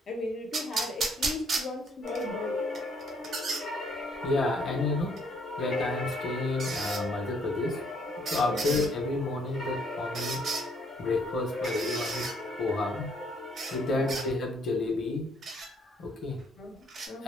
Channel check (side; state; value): both; normal; correlation 0.66